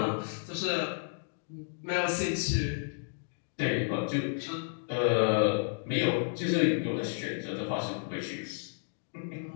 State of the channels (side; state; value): right; silent; digital silence